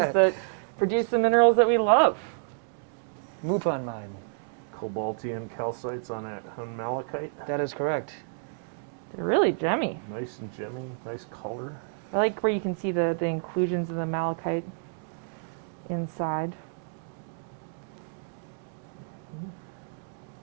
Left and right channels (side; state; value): left; silent; digital silence